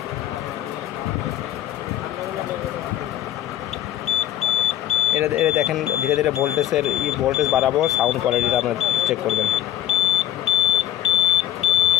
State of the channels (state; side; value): quieter; right; 12.5 dB